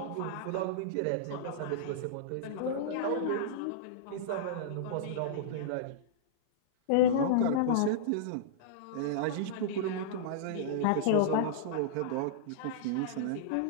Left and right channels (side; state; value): both; different; correlation -0.02